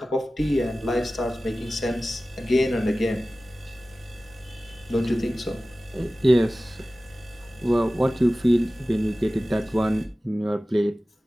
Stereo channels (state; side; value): normal; both; correlation 0.96